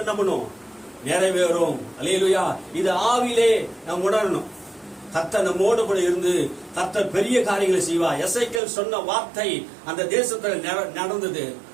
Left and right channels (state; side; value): drops out; left; at 8.6 s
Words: என்ன பண்ணும்? நிறைவேறும். அல்லேலூயா. இது ஆவிலே நாம் உணரணும். கர்த்தர் நம்மோடு கூட இருந்து கர்த்தர் பெரிய காரியங்களை செய்வார். எசேக்கியேல் சொன்ன வார்த்தை அந்த தேசத்துல நடந்தது.